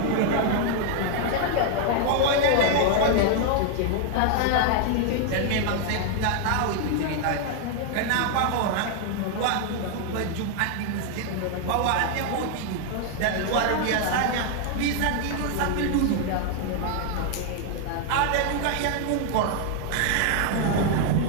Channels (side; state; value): both; different; correlation 0.00